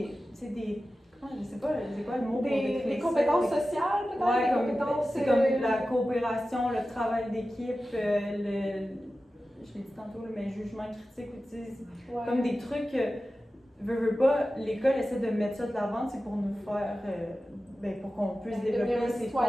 je sais pas, c'est quoi le mot pour décrire des compétences sociales, peut-être? C'est comme la coopération, le travail d'équipe, je l'ai dit tantôt, mais jugement critique, comme des trucs, veux pas, l'école essaie de mettre ça de l'avant, c'est pour nous faire, pour qu'on puisse développer ces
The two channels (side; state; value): both; normal; correlation 0.94